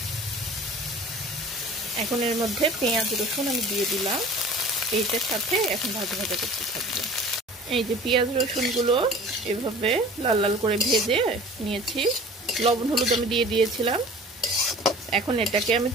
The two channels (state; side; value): normal; both; correlation 0.44